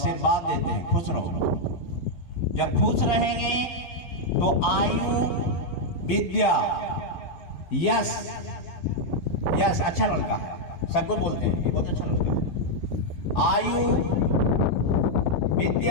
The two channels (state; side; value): late; right; 12 ms